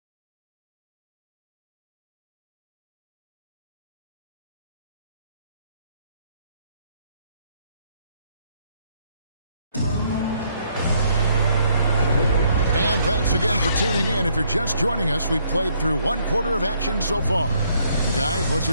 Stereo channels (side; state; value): both; inverted; correlation -0.69